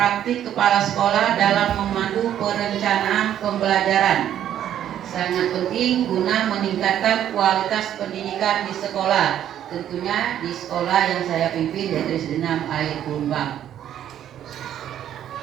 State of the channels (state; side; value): quieter; left; 10.7 dB